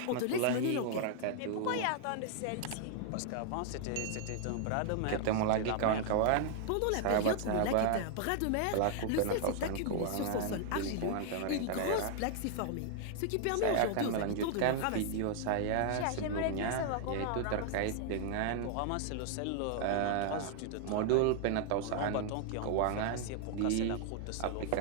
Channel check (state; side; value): different; both; correlation 0.00